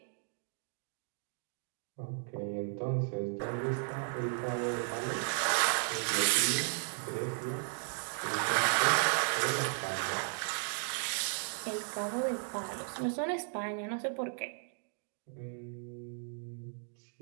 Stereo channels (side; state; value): left; silent; 54 dB below the other